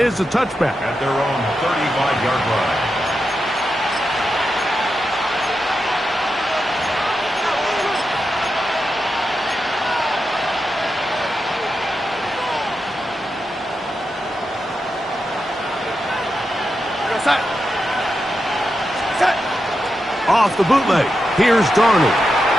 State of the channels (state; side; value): normal; both; correlation 0.88